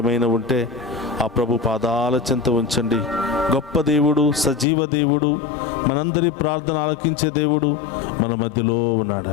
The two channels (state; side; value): drops out; right; at 4.7 s